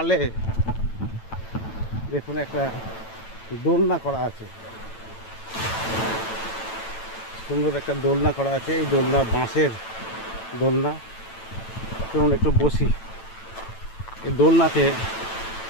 দেখুন একটা দোলনা করা আছে, সুন্দর একটা দোলনা করা আছে। এই দোলনা বাঁশের দোলনা। চলুন একটু বসি এই দোলনাতে।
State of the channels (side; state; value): right; late; 9.0 ms